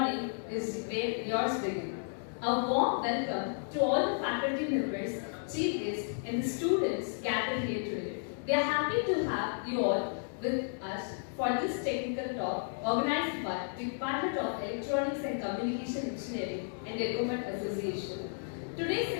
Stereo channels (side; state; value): right; silent; digital silence